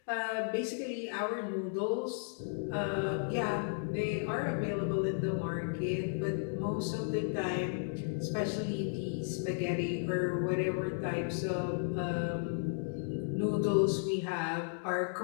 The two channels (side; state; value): right; silent; digital silence